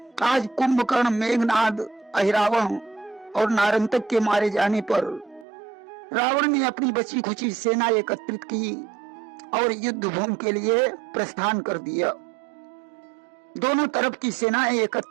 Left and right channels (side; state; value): left; drops out; at 5.5 s